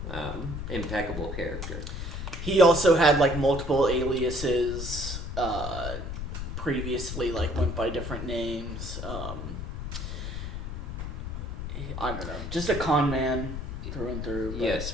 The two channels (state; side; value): noise; left; rumble, 5 dB below the sound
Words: Impeccable character. He also had like multiple aliases. Previously, like went by different names. I don't know, just a con man through and through. But... Yes,